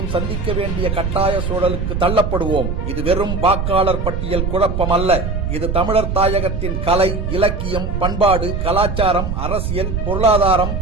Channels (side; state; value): right; noise; rumble, 2 dB below the sound